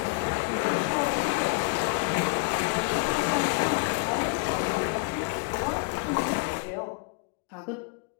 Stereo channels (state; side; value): quieter; right; 28.1 dB